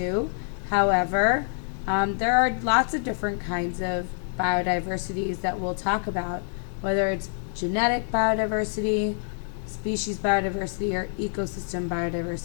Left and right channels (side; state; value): right; silent; digital silence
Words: However, there are lots of different kinds of biodiversities that we'll talk about, whether it's genetic biodiversity, species biodiversity, or ecosystem